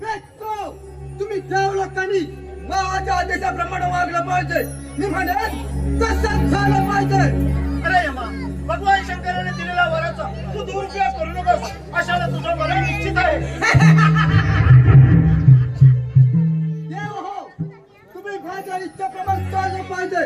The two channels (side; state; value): both; identical; correlation 1.00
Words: तुम्ही देव लोकांनी माझ्या आदेशाप्रमाणे वागलं पाहिजे. मी म्हणेन तसंच झालं पाहिजे. अरे यमा, भगवान शंकराने दिलेला वराचा तू दुरुपयोग करू नकोस. अशाला तुझं मरण निश्चित आहे. देव हो, तुम्ही माझ्या इच्छेप्रमाणे चाललं पाहिजे.